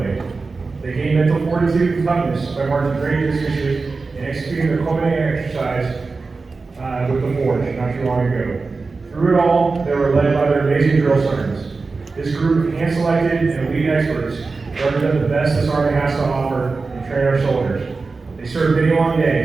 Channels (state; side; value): quieter; left; 4.1 dB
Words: They gained mental fortitude and toughness by marching great distances and executing their culminating exercise with the Forge not too long ago. Through it all, they were led by their amazing drill sergeants. This group of hand-selected and elite experts represent the best this Army has to offer and train our soldiers. They served many long